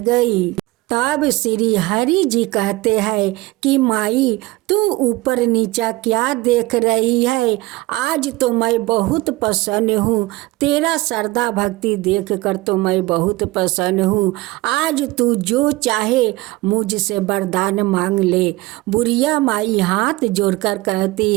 तब श्री हरि जी कहते हैं कि माई तू ऊपर नीचा क्या देख रही है? आज तो मैं बहुत प्रसन्न हूँ, तेरा श्रद्धा भक्ति देख कर तो मैं बहुत प्रसन्न हूँ। आज तू जो चाहे मुझसे वरदान मांग ले। बुढ़िया माई हाथ जोड़कर कहती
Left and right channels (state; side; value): quieter; left; 19.9 dB